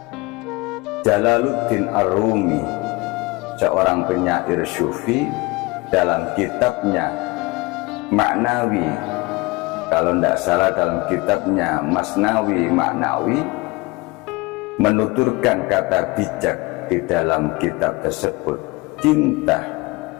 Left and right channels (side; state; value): right; quieter; 23.7 dB